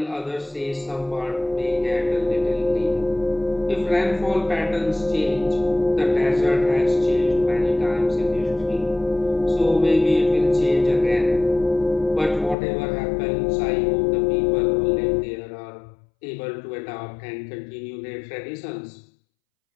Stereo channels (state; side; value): drops out; right; at 12.6 s